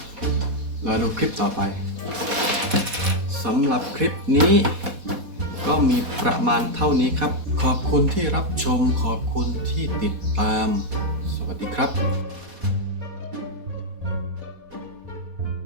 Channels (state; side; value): late; left; 4.1 ms